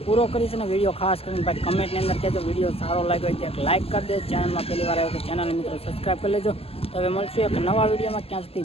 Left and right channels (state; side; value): late; right; 0.28 ms